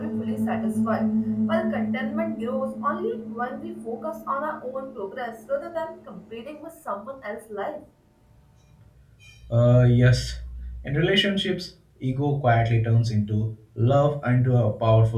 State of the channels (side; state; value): both; identical; correlation 1.00